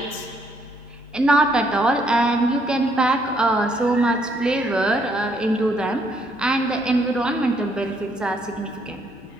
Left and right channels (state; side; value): normal; both; correlation 0.71